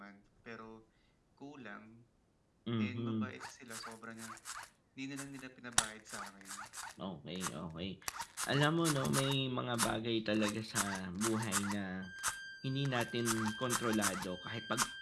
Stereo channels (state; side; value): identical; both; correlation 1.00